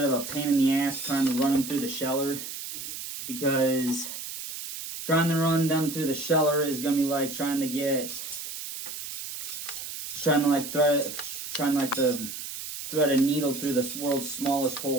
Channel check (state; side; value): noise; right; hiss, 8 dB below the sound